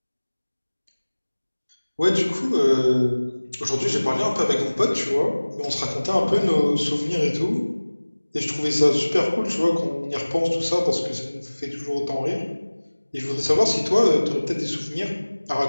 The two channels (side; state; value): both; inverted; correlation -1.00